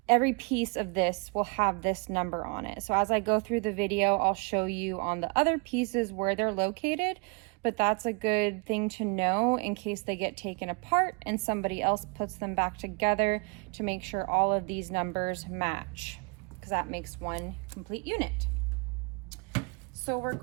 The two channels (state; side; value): quieter; left; 32.3 dB